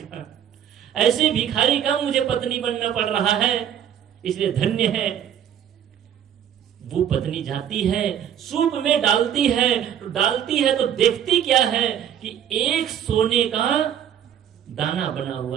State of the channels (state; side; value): quieter; left; 9.6 dB